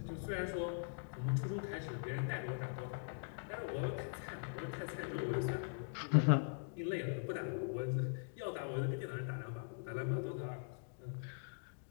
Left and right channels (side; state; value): right; silent; digital silence